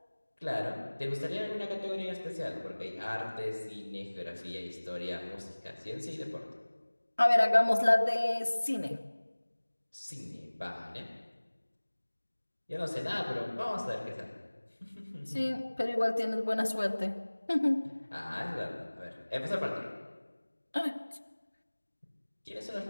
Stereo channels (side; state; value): both; inverted; correlation -1.00